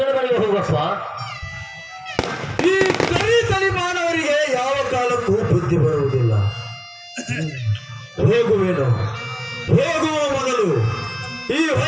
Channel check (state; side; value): identical; both; correlation 1.00